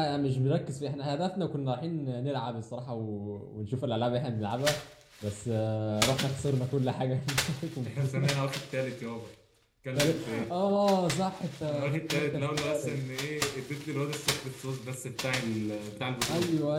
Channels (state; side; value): identical; both; correlation 1.00